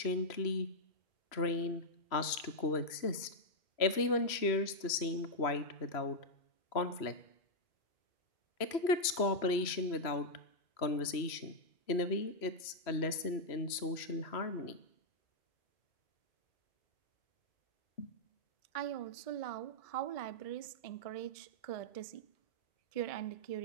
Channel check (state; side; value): late; right; 3.0 ms